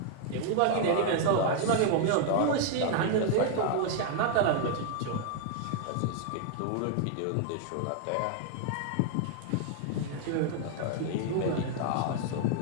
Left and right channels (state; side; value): different; both; correlation 0.00